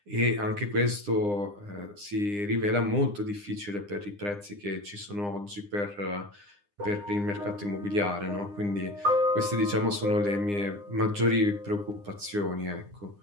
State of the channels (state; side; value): late; left; 9.8 ms